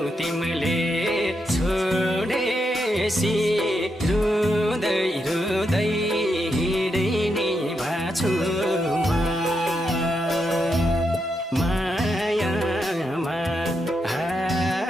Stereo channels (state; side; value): normal; both; correlation 0.83